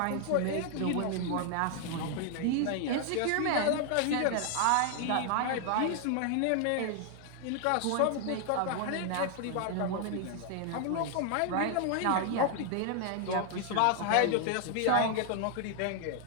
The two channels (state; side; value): different; both; correlation 0.00